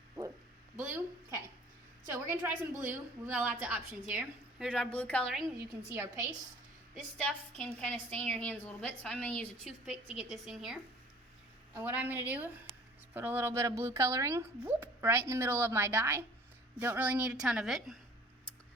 Blue. Blue? Okay. So we're going to try some blue. We've got lots of options here. Here's our blue coloring. You can see our paste. This stuff can kind of stain your hands a little bit, so I'm going to use a toothpick to get this in here. And what I'm going to do is put a little bit of blue coloring right in the middle of my dye. Don't really need a ton of it.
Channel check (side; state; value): both; normal; correlation 0.50